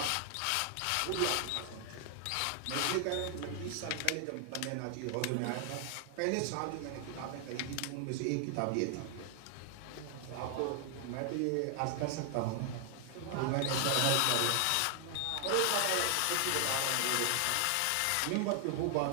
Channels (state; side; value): different; both; correlation 0.00